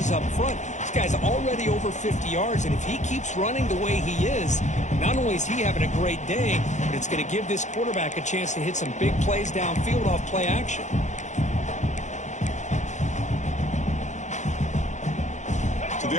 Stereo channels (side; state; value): right; late; 0.35 ms